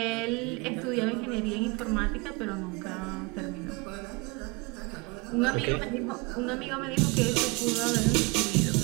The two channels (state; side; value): quieter; left; 27.5 dB